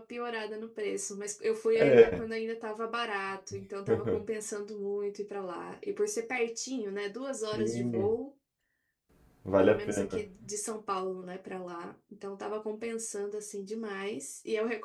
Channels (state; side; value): identical; both; correlation 1.00